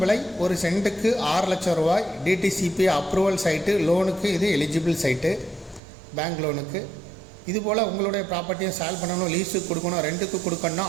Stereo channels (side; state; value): left; drops out; at 5.8 s